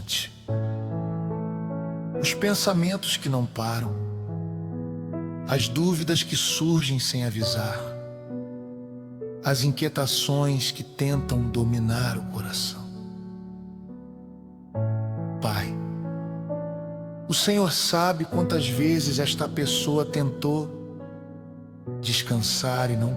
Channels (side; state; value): both; identical; correlation 1.00